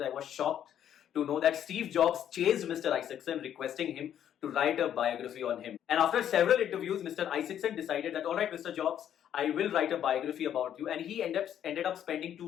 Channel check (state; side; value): quieter; right; 10.1 dB